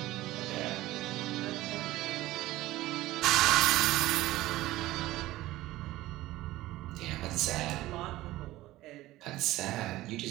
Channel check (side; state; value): left; quieter; 16.9 dB